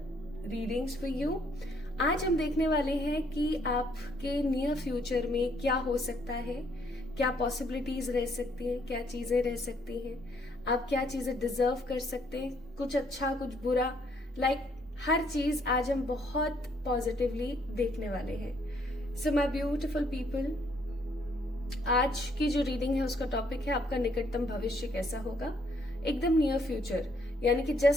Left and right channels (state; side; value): normal; both; correlation 0.68